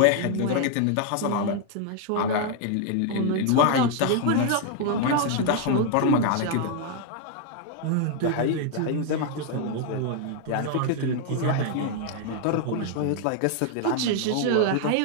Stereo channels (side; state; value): both; different; correlation 0.00